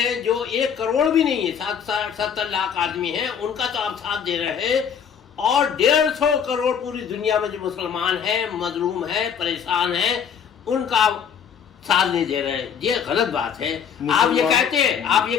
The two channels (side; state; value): right; quieter; 7.6 dB